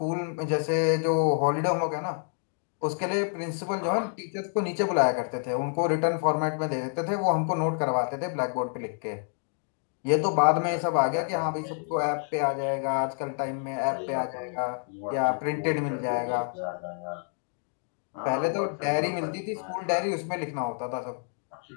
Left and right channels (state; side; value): silent; right; 57 dB below the other